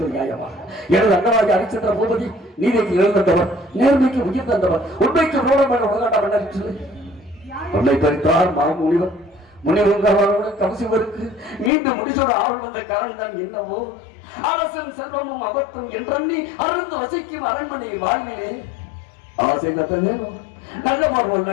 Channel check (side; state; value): right; drops out; at 11.7 s